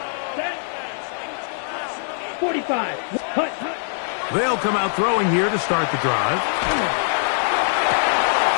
45. Cut. They'll come out throwing here to start the drive.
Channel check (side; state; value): right; silent; digital silence